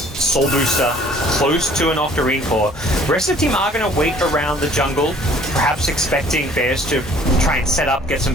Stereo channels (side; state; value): both; normal; correlation 0.55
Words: Booster, close to an Octarine Core. The rest of the team are going to wait around the jungle, perhaps expecting Bears to try and set up, get some